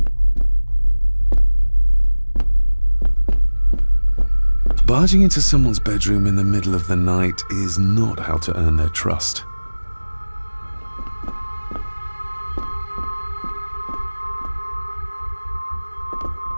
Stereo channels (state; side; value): inverted; both; correlation -1.00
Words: Barging into someone's bedroom in the middle of the night is not how to earn their trust.